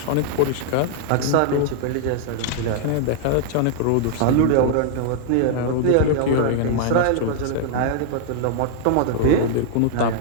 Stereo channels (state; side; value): different; both; correlation -0.01